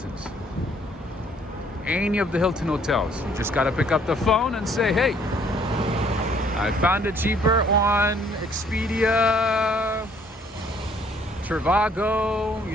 Any of the Hilton hotels, you just gotta pick up the phone and say, hey, I found it cheaper on Expedia, Trivago,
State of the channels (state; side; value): normal; both; correlation 0.62